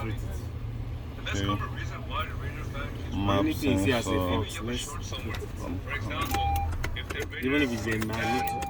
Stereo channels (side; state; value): both; identical; correlation 1.00